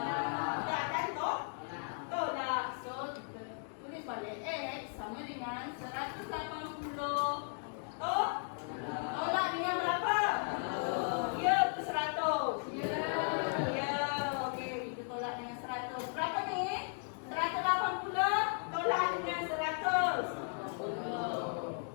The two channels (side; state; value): right; silent; 54 dB below the other